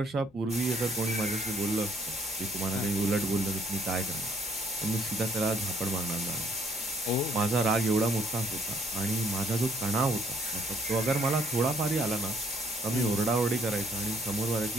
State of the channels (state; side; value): normal; both; correlation 0.65